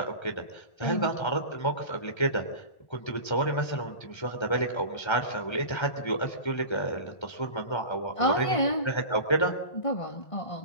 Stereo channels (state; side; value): late; right; 1.3 ms